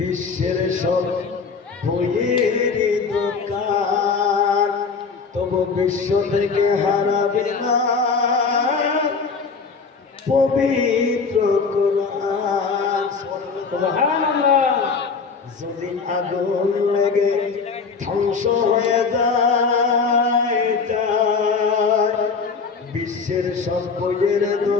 সব বইয়ের দোকান, তবু বিশ্ব থেকে হারাবে না পবিত্র কোরআন। সুবহানাল্লাহ। যদি আগুন লেগে ধ্বংস হয়ে যায়, বিশ্বের সব বইয়ের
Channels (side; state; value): right; quieter; 5.0 dB